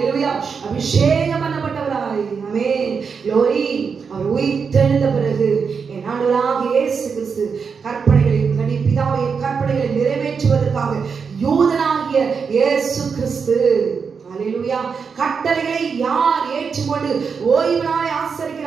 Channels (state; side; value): quieter; left; 5.8 dB